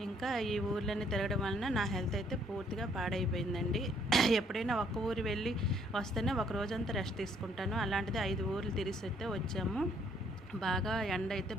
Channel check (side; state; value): both; normal; correlation 0.66